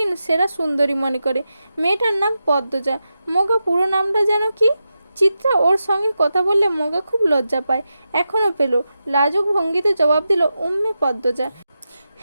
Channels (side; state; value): both; inverted; correlation -0.90